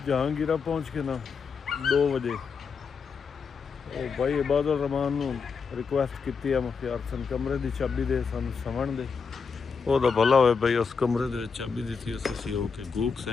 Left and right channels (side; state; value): right; quieter; 5.5 dB